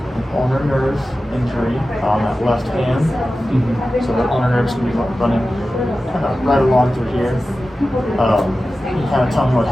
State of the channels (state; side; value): normal; both; correlation 0.94